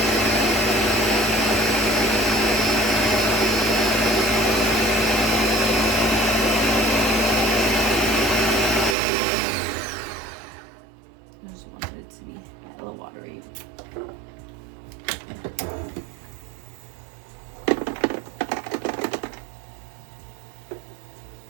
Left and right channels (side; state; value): left; drops out; at 9.0 s